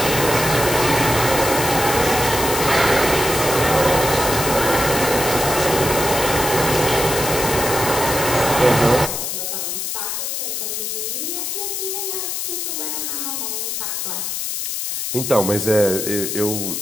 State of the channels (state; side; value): noise; left; hiss, 3 dB below the sound